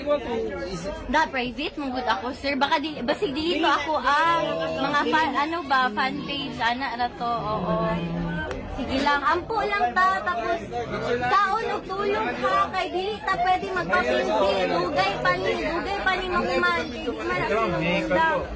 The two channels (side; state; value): both; identical; correlation 1.00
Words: ko. Da private mo good ako, sir. Baka basig dito ako mga fan page ana ra to. Oo. Sige lang, ampo lang ta, tapos kaon og tulog ha, kay dili ta pwede magpapindi, dugay pa ni makuman. Di man na